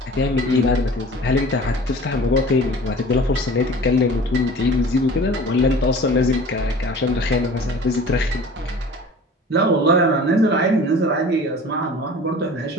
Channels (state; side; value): normal; both; correlation 0.42